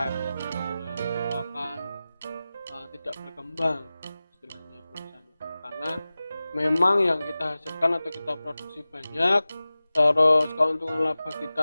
akan tidak berkembang istilahnya perusahaan itu. Karena memang yang kita hasilkan atau kita produksi banyak, terus keuntungan laba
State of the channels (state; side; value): inverted; both; correlation -0.97